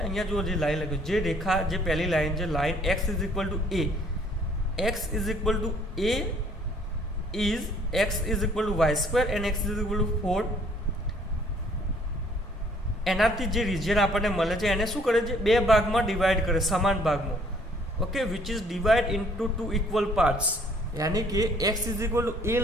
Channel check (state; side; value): normal; both; correlation 0.61